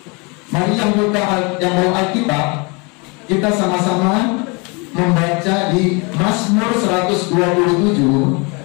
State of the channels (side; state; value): right; quieter; 30.2 dB